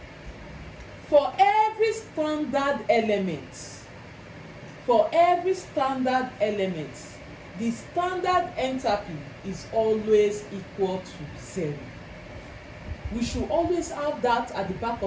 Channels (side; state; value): both; identical; correlation 1.00